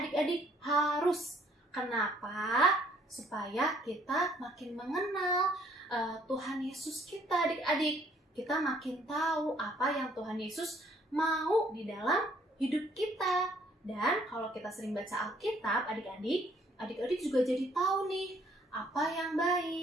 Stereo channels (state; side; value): normal; both; correlation 0.63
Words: harus. Kenapa? Supaya kita makin mengenal Tuhan Yesus kita adik-adik. Kita makin tahu apa yang Tuhan Yesus mau di dalam hidup kita. Dan kalau kita sering baca Alkitab adik-adik, adik-adik juga jadi tahu nih apa yang